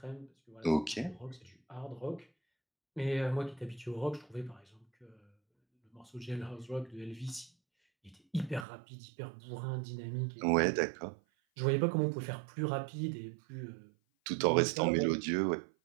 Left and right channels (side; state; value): left; drops out; at 8.7 s